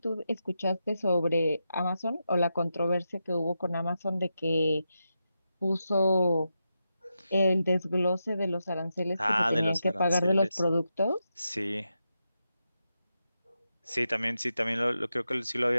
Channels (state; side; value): inverted; both; correlation -0.87